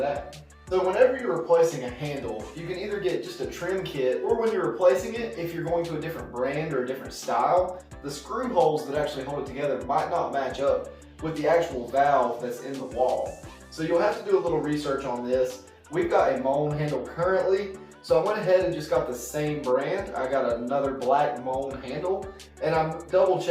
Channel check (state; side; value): identical; both; correlation 1.00